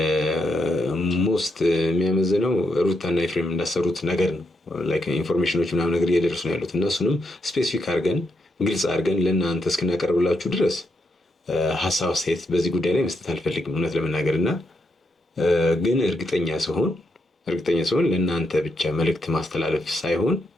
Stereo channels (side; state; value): both; normal; correlation 0.81